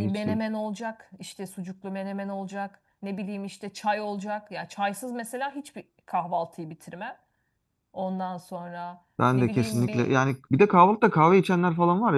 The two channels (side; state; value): both; identical; correlation 1.00